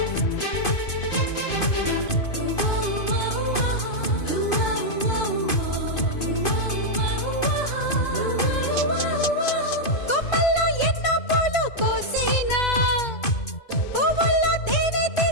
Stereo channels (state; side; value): late; right; 2.5 ms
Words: కొమ్మల్లో ఎన్నో పూలు కోసేనా పువ్వుల్లో తేనె